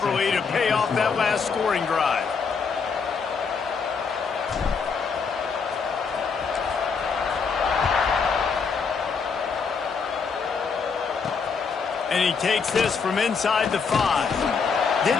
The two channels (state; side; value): quieter; right; 5.5 dB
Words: to pay off that last scoring drive. And he takes this from inside the 5.